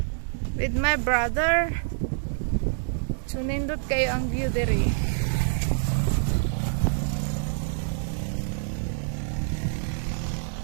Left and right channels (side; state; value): left; silent; digital silence